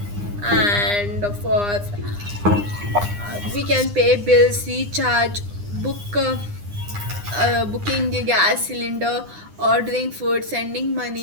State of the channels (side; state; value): left; late; 9.8 ms